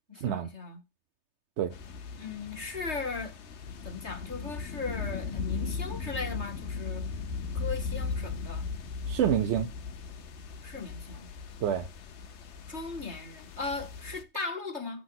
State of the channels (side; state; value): left; late; 3.3 ms